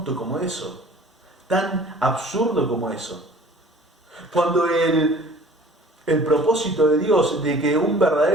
como eso, tan absurdo como eso. Cuando el propósito de Dios de que un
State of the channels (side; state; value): both; normal; correlation 0.49